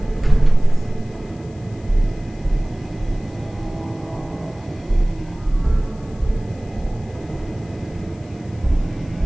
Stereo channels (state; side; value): noise; left; hiss, 28 dB below the sound